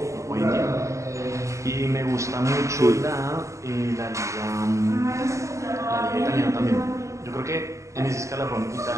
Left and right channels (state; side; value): late; left; 0.15 ms